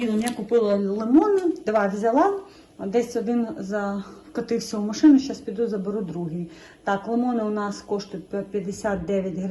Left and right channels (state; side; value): identical; both; correlation 1.00